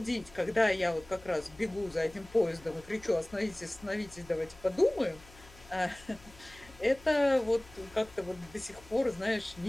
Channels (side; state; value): left; noise; hum, 22 dB below the sound